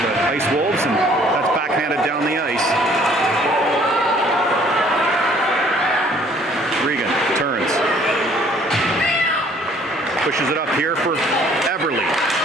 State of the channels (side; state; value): both; normal; correlation 0.58